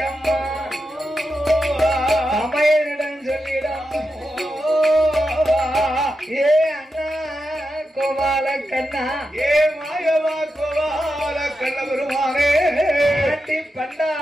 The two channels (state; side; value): normal; both; correlation 0.88